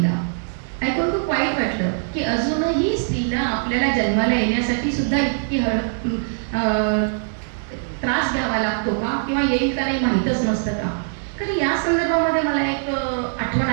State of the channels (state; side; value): silent; left; digital silence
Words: ऐकून खूप वाईट वाटलं की अजूनही स्त्रीला आपल्याला जन्माला येण्यासाठी सुद्धा इतकी त्रास घ्यावा लागतो का, किंवा येईल का नाही माहीतच नसतं का. तर या संदर्भामध्ये मला एक आठवण